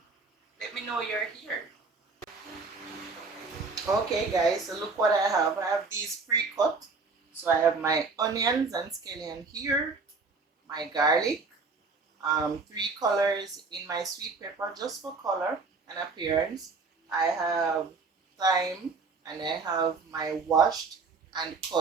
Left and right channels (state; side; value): quieter; left; 4.3 dB